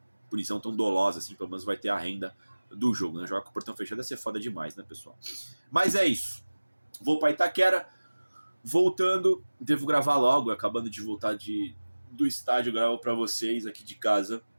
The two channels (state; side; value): inverted; both; correlation -1.00